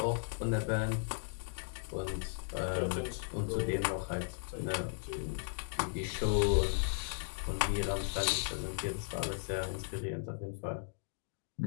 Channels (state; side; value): silent; right; digital silence